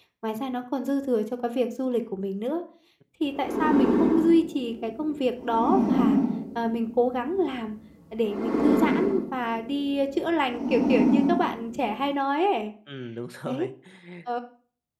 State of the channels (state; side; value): identical; both; correlation 1.00